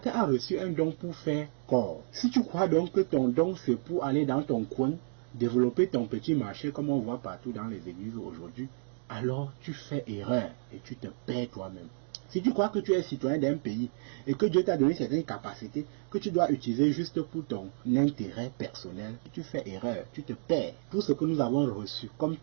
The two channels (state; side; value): silent; left; digital silence